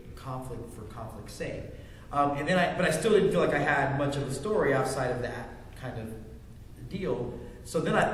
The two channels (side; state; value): both; identical; correlation 1.00